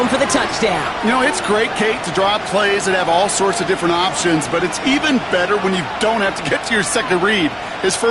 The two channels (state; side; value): identical; both; correlation 1.00